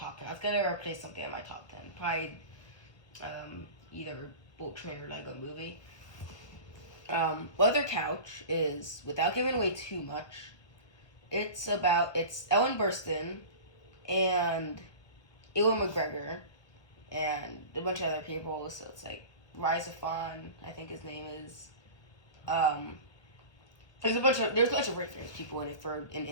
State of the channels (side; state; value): right; late; 1.1 ms